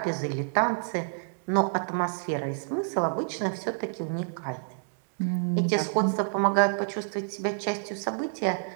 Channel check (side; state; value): left; silent; digital silence